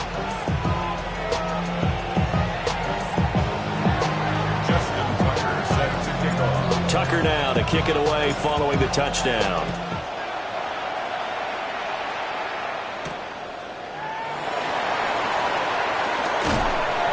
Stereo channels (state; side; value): identical; both; correlation 1.00